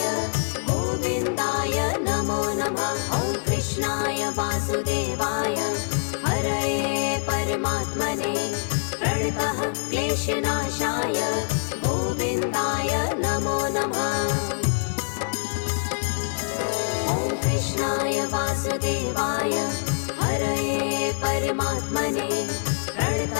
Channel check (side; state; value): right; silent; 62 dB below the other